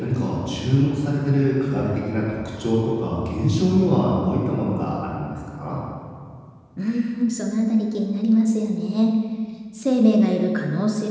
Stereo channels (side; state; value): both; identical; correlation 1.00